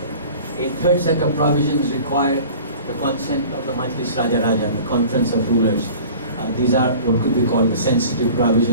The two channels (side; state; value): both; inverted; correlation -0.43